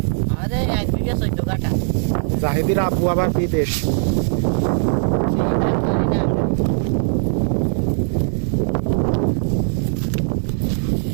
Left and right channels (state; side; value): silent; left; 66 dB below the other